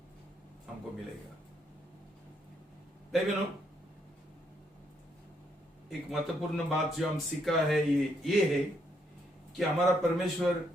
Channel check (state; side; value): normal; both; correlation 0.74